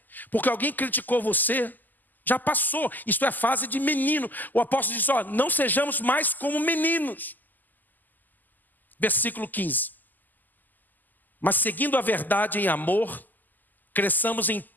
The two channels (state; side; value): late; right; 0.085 ms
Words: porque alguém criticou você. Já passou, isso é fase de menino. O apóstolo diz, não sejamos mais como meninos. Versículo 15. Mas seguindo a verdade em amor, cresçamos em